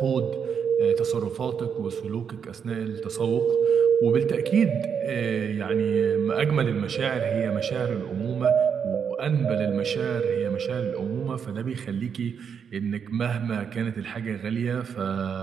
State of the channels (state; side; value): quieter; left; 7.1 dB